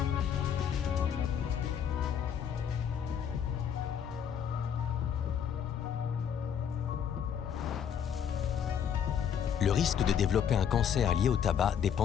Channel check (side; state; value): right; quieter; 8.2 dB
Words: Le risque de développer un cancer lié au tabac